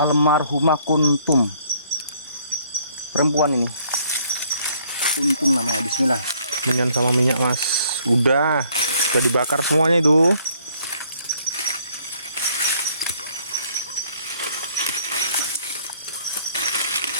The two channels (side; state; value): both; inverted; correlation -0.63